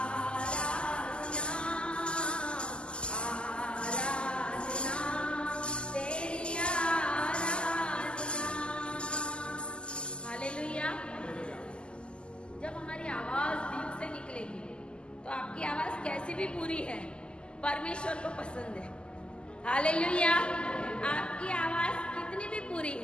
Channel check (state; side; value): late; right; 0.050 ms